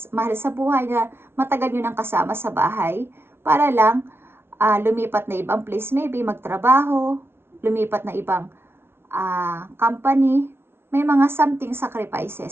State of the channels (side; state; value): left; late; 0.12 ms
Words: sa buhay na matagal nyo nang kasama sa bahay para lang lumipat na ibang place, maybe magtrabaho, lumipat na ibang company. May mga something